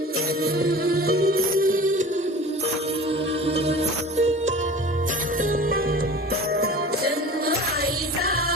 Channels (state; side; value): normal; both; correlation 0.38